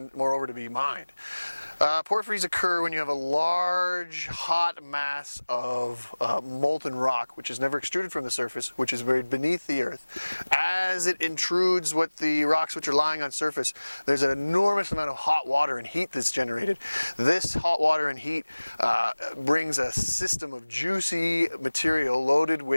moreover to be mined. Porphyries occur when you have a large, hot mass of molten rock, which is never extruded from the surface, which is buried beneath the earth. As it intrudes what the rocks which are lying on surface, there's an enormous amount of hot water and heat that's generated. This hot water and heat brings a system of juicy material loaded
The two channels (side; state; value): both; inverted; correlation -1.00